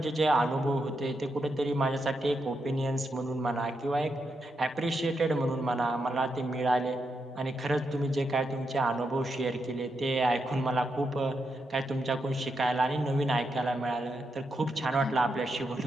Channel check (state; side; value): normal; both; correlation 0.83